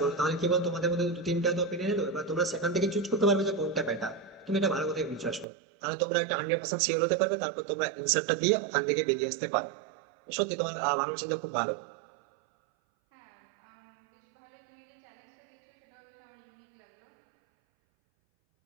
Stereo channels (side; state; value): left; drops out; at 5.5 s